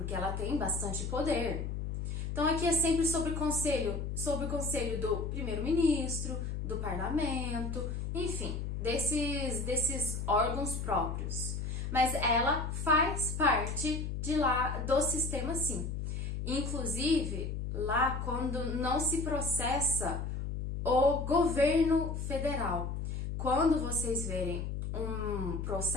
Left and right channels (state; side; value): noise; left; hum, 3 dB below the sound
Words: ela tem bastante poder. Então aqui é sempre sobre o conselho do primeiro-ministro, do parlamento, enfim, desses órgãos próprios. Mas ela faz parte de lá do sistema, sim. Inclusive, lá quando não se processa o governo federal. Quando vocês verem um